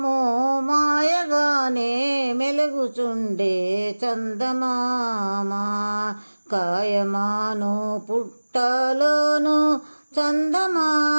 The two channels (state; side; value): inverted; both; correlation -1.00